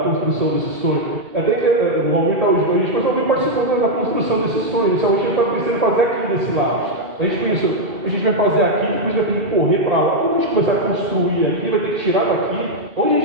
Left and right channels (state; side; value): late; left; 2.2 ms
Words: construção desse sonho. Até que o Almir está hoje com a gente, mas alguém participou da construção desse sonho. Inicialmente a gente estava pensando em fazer aqui desse lado. A gente pensou, a gente vai fazer aqui, depois vai ter que correr para lá. Quando a gente começar a construir aqui, vai ter que tirar daqui, onde a